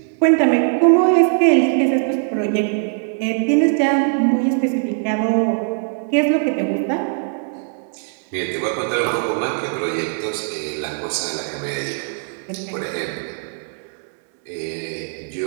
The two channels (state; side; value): silent; left; digital silence